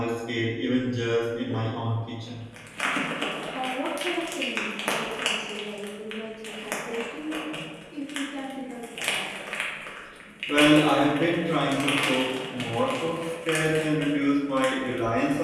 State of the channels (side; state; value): both; identical; correlation 1.00